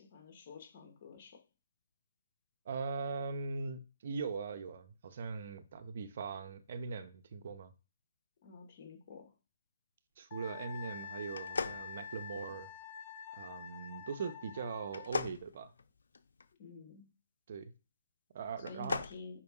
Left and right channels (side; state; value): both; inverted; correlation -0.74